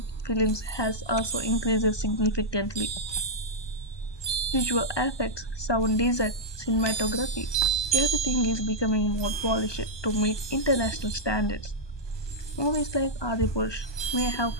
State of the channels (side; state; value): right; late; 1.2 ms